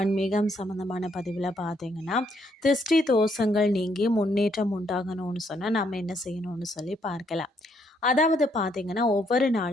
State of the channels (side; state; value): both; normal; correlation 0.72